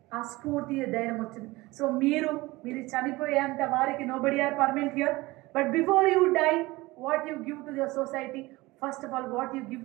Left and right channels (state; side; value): quieter; left; 20.9 dB